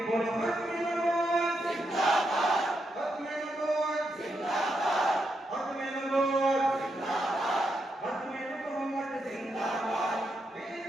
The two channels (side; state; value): both; normal; correlation 0.82